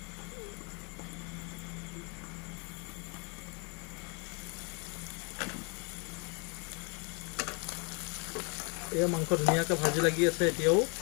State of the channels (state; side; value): quieter; right; 34.0 dB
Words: এয়া মাংস ধুনীয়াকৈ ভাজি লাগি আছে। এতিয়াও